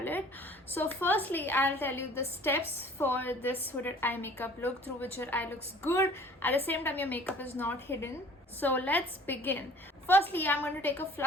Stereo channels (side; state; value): both; normal; correlation 0.49